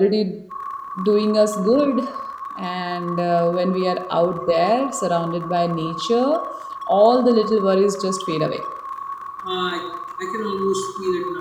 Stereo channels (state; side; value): identical; both; correlation 1.00